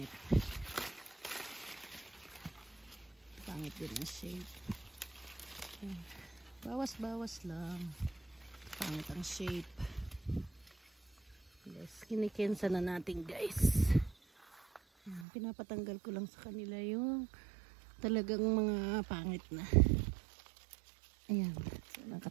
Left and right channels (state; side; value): drops out; left; at 15.2 s